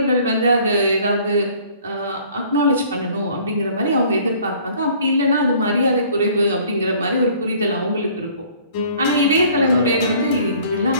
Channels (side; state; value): both; inverted; correlation -0.55